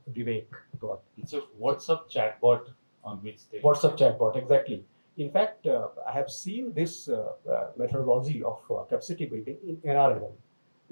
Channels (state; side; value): inverted; both; correlation -1.00